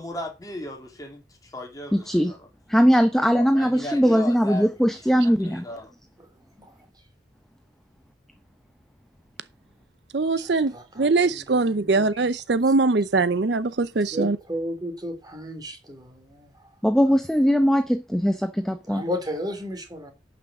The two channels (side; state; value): both; normal; correlation 0.71